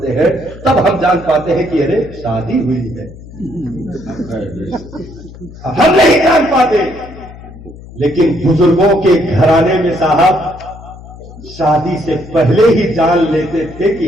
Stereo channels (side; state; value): left; noise; hum, 17 dB below the sound